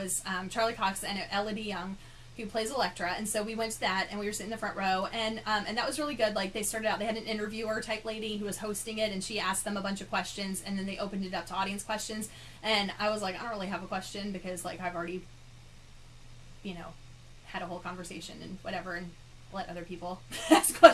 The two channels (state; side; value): identical; both; correlation 1.00